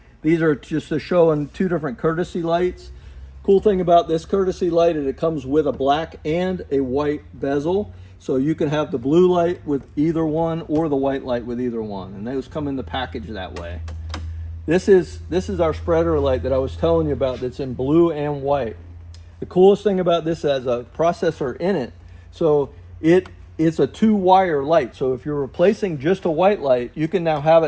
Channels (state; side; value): identical; both; correlation 1.00